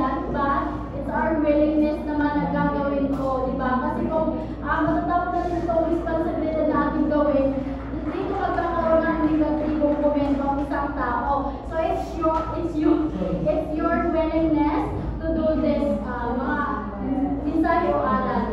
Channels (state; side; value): identical; both; correlation 1.00